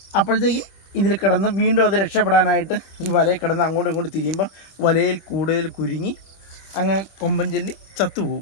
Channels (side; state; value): right; late; 25 ms